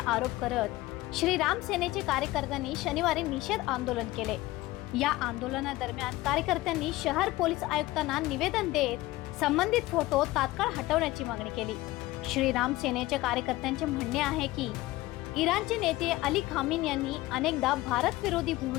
आरोप करत श्रीराम सेनेचे कार्यकर्त्यांनी शनिवारी निषेध आंदोलन केले। या आंदोलनादरम्यान कार्यकर्त्यांनी शहर पोलीस आयुक्तांना निवेदन देत संबंधित फोटो तात्काळ हटवण्याची मागणी केली। श्रीराम सेनेच्या कार्यकर्त्यांचे म्हणणे आहे की इराणचे नेते अली खामेनी यांनी अनेकदा भारत विरोधी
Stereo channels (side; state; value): right; quieter; 18.3 dB